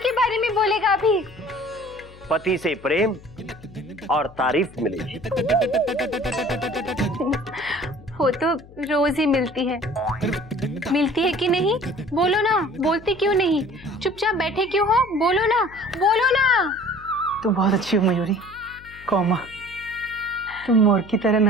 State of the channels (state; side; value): noise; left; hum, 21 dB below the sound